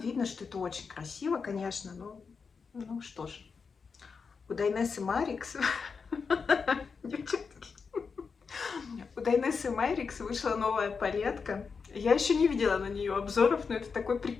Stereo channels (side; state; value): right; quieter; 5.4 dB